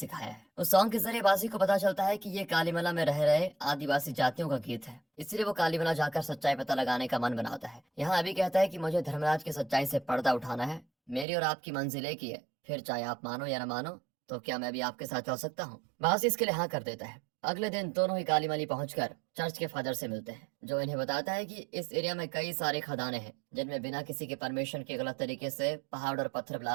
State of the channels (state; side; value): drops out; left; at 11.2 s